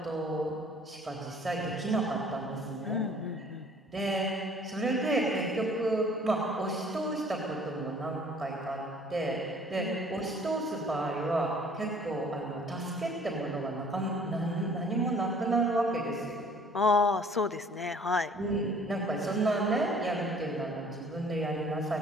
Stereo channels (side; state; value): both; normal; correlation 0.54